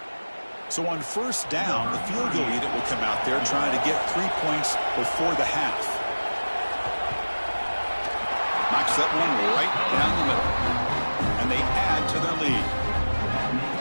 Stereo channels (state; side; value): inverted; both; correlation -1.00